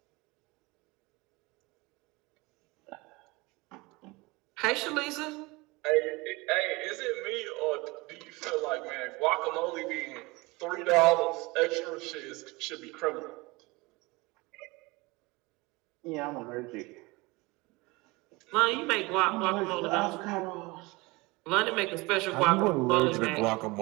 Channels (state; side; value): quieter; left; 23.7 dB